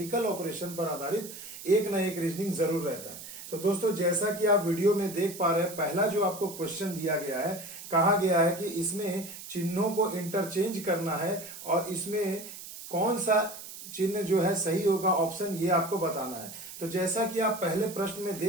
ऑपरेशन पर आधारित एक ना एक रीजनिंग जरूर रहता है। तो दोस्तों जैसा कि आप वीडियो में देख पा रहे हैं, पहला जो आपको क्वेश्चन दिया गया है, कहा गया है कि इसमें चिन्हों को इंटरचेंज करना है और इसमें कौन सा चिन्ह जो है सही होगा ऑप्शन, ये आपको बताना है। तो जैसा कि आप पहले प्रश्न में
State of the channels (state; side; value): noise; right; hiss, 12 dB below the sound